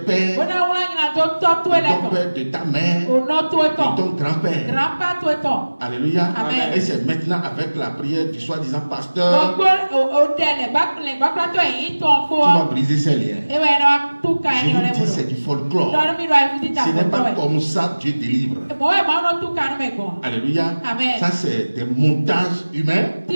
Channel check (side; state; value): both; inverted; correlation -1.00